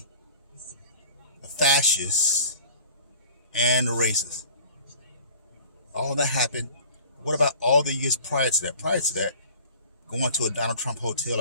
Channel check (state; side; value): inverted; both; correlation -0.44